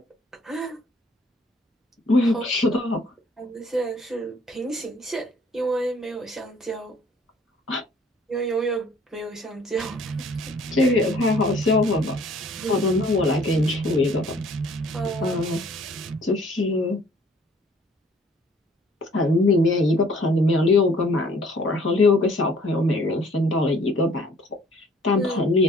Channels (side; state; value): both; normal; correlation 0.57